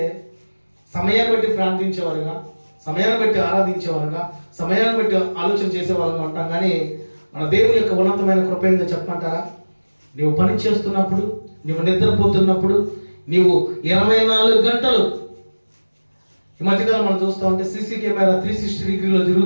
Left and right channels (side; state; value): both; inverted; correlation -1.00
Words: సమయాన్ని బట్టి ప్రార్థించేవారుగా, సమయాన్ని బట్టి ఆరాధించేవారుగా, సమయాన్ని బట్టి ఆలోచన చేసేవారుగా ఉంటాం. కానీ మన దేవుని యొక్క ఉన్నతమైన కృప ఏందో చెప్పమంటారా? నీవు పని చేస్తున్నప్పుడు, నీవు నిద్రపోతున్నప్పుడు, నీవు 24 గంటలు, ఈ మధ్యకాలం మనం చూస్తూ ఉంటే సీసీ కెమెరా 360 డిగ్రీలో